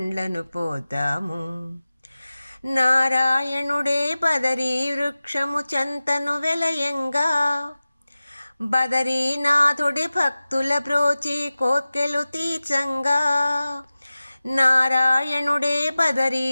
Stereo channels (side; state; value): both; inverted; correlation -0.97